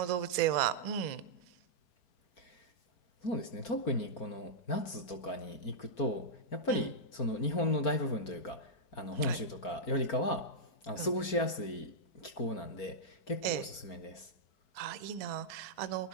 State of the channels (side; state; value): right; late; 4.4 ms